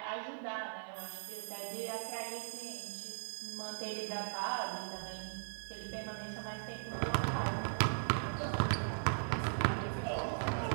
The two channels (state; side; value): silent; left; digital silence